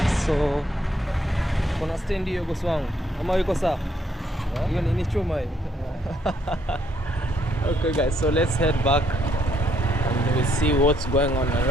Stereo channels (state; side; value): normal; both; correlation 0.71